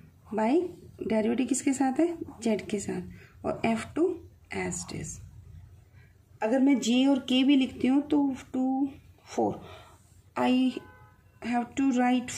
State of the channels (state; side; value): identical; both; correlation 1.00